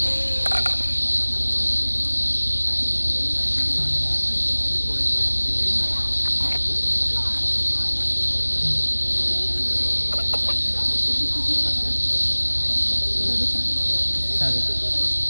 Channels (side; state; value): both; inverted; correlation -1.00